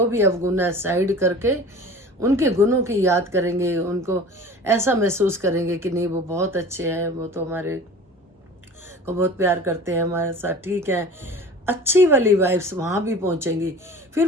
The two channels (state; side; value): normal; both; correlation 0.40